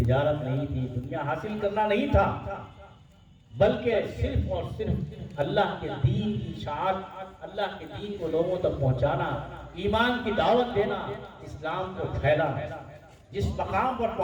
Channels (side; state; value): both; identical; correlation 1.00